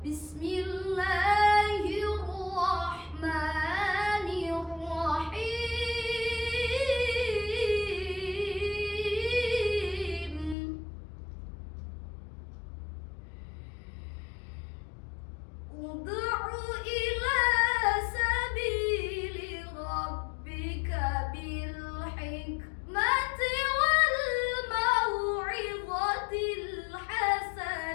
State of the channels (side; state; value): right; drops out; at 10.6 s